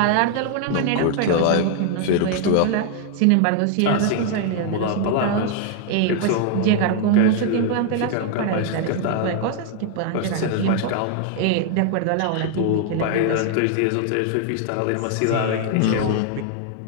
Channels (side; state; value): both; different; correlation 0.00